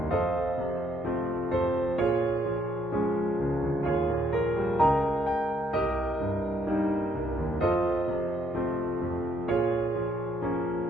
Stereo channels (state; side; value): normal; both; correlation 0.70